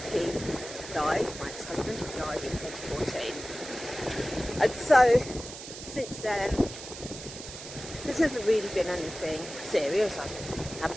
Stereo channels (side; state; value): right; noise; hiss, 11 dB below the sound